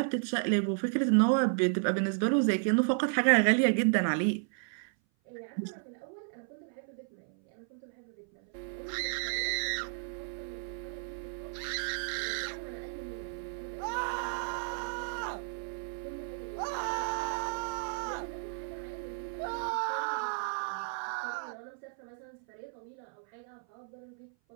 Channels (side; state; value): left; silent; 56 dB below the other